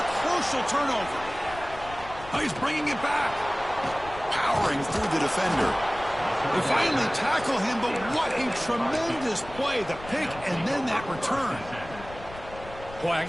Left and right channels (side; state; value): left; noise; rumble, 16 dB below the sound